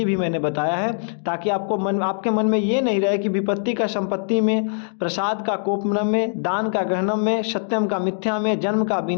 भी मैंने बताया है, ताकि आपके मन में ये नहीं रहे कि विपत्ति का संपत्ति में, प्रसाद का कोपनम में, दान का ग्रहणम में, सत्यम का मिथ्या में, जन्म का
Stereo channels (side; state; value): right; silent; digital silence